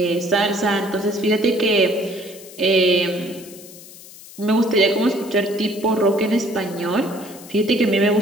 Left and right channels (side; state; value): left; noise; hiss, 18 dB below the sound